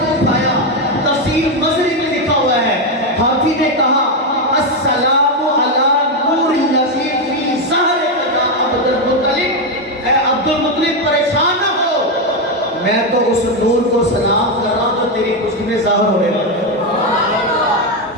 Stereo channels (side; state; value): both; normal; correlation 0.07